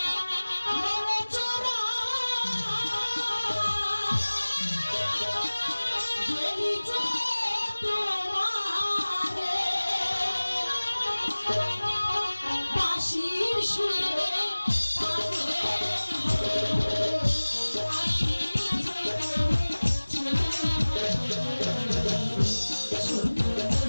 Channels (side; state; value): both; inverted; correlation -1.00